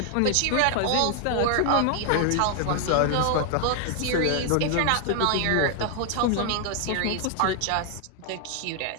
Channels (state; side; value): different; both; correlation 0.00